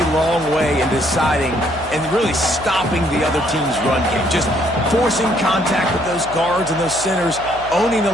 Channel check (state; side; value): noise; left; hum, 18 dB below the sound